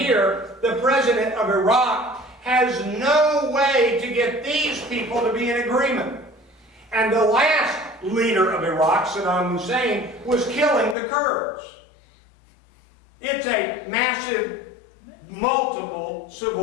the president of Iraq, has no way to get these people to be in agreement. And the last leader of Iraq, Saddam Hussein, was killing the Kurds. It's a massive, multiple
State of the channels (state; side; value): drops out; right; at 11.0 s